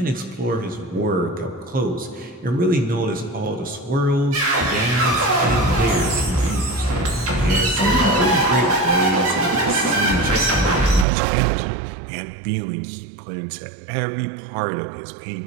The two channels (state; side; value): drops out; left; at 11.1 s